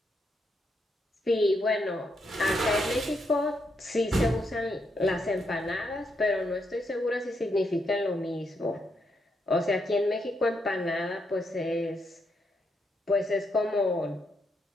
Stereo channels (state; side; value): normal; both; correlation 0.79